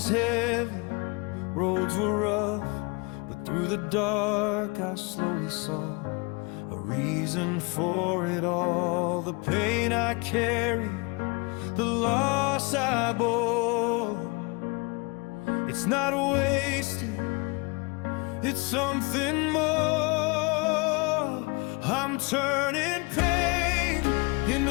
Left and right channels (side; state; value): right; quieter; 28.3 dB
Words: heavy, roads were rough, but through the dark I slowly saw a reason for it all. The pain I carried, the loss I bore, it's not wasted, it's something more. I'm turning pain